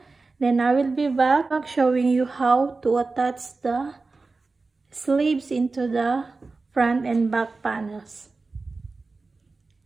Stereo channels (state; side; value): quieter; left; 3.8 dB